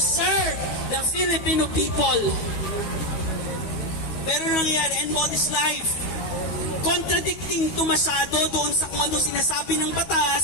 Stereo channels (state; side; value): late; right; 12 ms